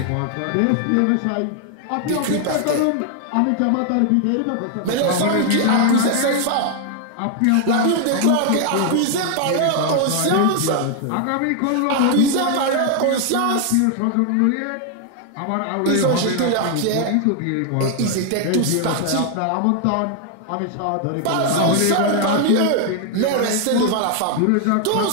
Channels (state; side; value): different; both; correlation 0.00